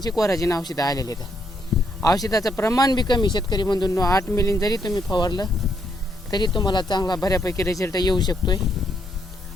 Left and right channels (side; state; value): both; normal; correlation 0.75